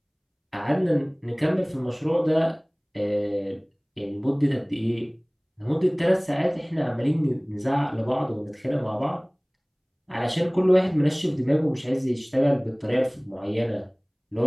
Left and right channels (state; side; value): identical; both; correlation 1.00